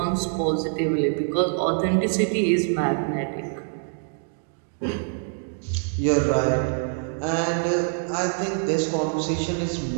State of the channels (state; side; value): silent; left; digital silence